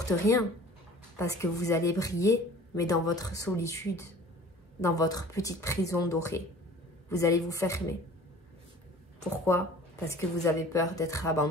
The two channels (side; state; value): both; normal; correlation 0.46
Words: rien parce que vous allez briller, mais dans votre solitude, dans votre petite prison dorée. Vous allez vous fermer. Pourquoi? Parce que vous avez peur d'être